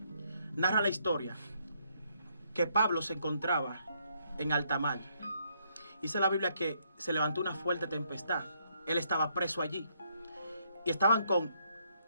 narra la historia que Pablo se encontraba en alta mar. Dice la Biblia que se levantó una fuerte tempestad. Él estaba preso allí. Y estaban con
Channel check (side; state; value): both; inverted; correlation -0.72